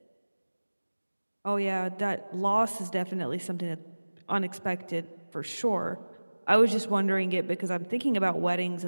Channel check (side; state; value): both; inverted; correlation -1.00